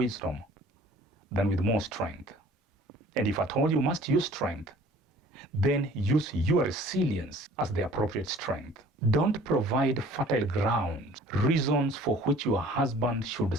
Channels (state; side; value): normal; both; correlation 0.51